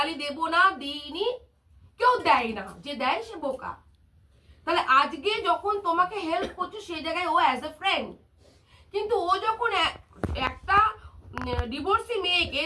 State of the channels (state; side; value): identical; both; correlation 1.00